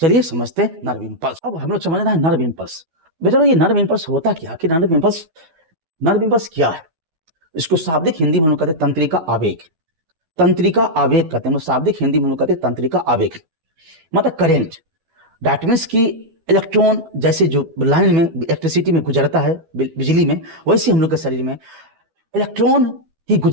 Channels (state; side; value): late; left; 12 ms